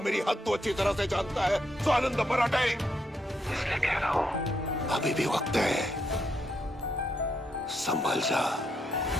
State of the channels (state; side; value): normal; both; correlation 0.78